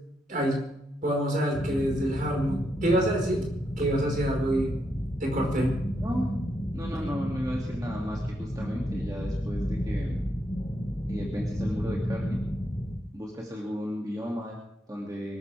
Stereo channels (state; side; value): normal; both; correlation 0.80